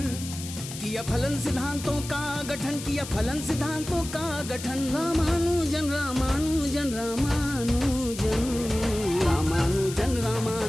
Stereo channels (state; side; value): noise; left; hiss, 11 dB below the sound